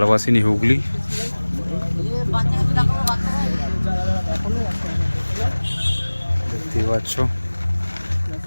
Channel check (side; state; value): both; inverted; correlation -1.00